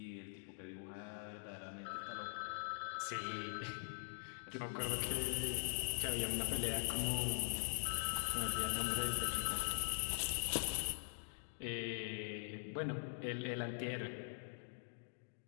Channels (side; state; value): right; silent; digital silence